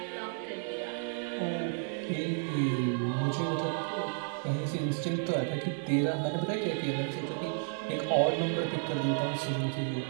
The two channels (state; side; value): silent; left; 56 dB below the other